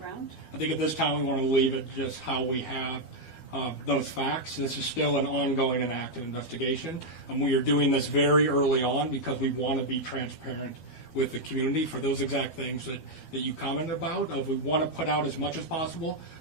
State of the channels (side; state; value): right; late; 12 ms